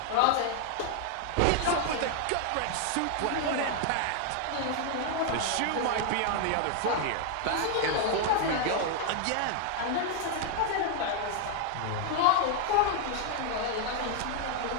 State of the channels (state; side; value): different; both; correlation 0.00